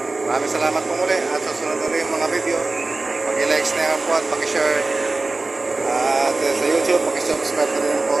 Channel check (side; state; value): left; quieter; 3.3 dB